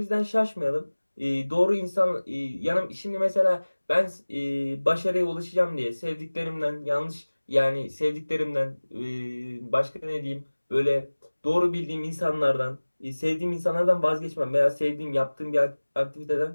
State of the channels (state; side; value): inverted; both; correlation -1.00